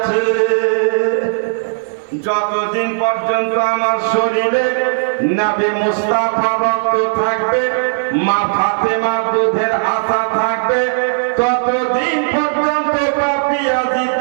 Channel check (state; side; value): silent; left; digital silence